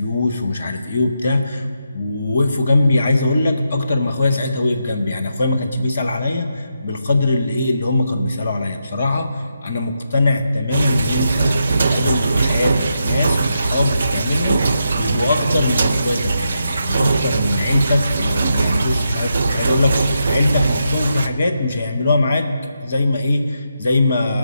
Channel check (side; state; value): both; inverted; correlation -0.83